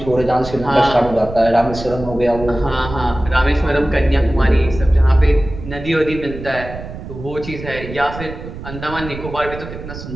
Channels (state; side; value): noise; right; rumble, 11 dB below the sound